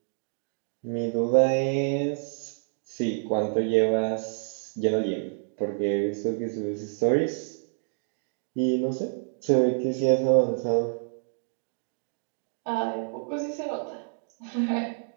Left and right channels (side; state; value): left; silent; digital silence